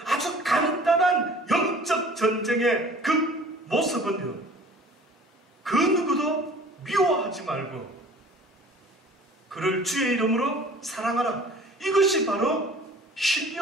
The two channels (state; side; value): normal; both; correlation 0.48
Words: 아주 간단한 영적 전쟁의 그 모습은요 그 누구도 미워하지 말고 그를 주의 이름으로 사랑하라. 이것이 바로